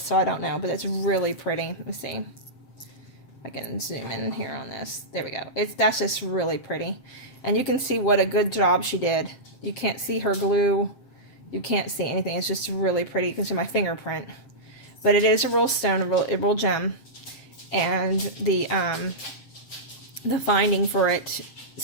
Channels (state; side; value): late; right; 7.6 ms